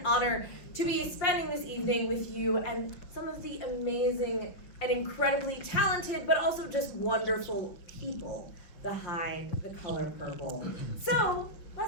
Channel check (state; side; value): late; right; 5.8 ms